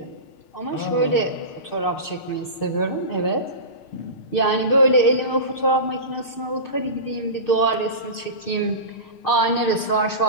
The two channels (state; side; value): late; right; 6.6 ms